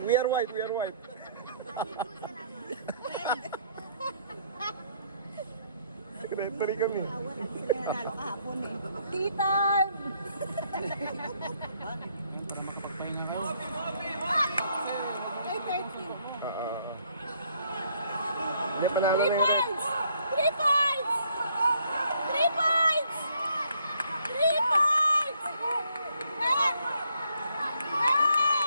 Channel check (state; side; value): inverted; both; correlation -0.68